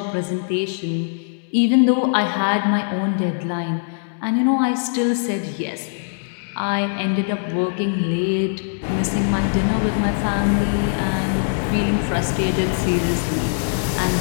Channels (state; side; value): silent; right; 63 dB below the other